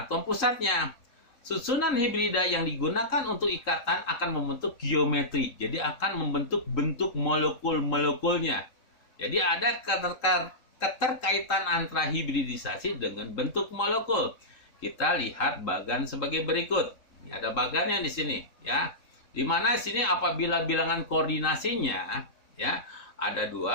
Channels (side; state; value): right; late; 3.8 ms